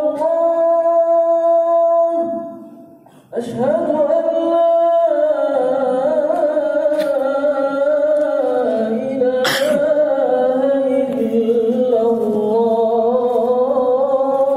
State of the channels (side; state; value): both; identical; correlation 1.00